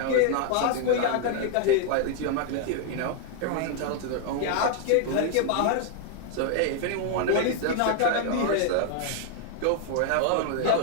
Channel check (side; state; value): both; different; correlation 0.00